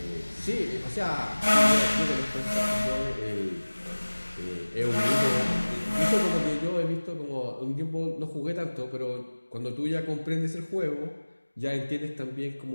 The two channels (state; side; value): inverted; both; correlation -1.00